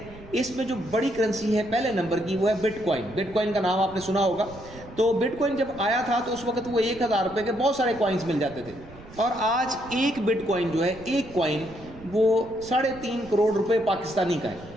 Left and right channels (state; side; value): noise; right; rumble, 19 dB below the sound